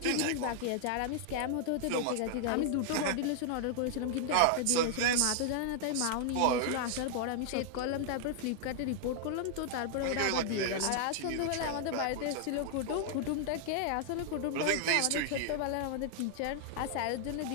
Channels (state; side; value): different; both; correlation -0.01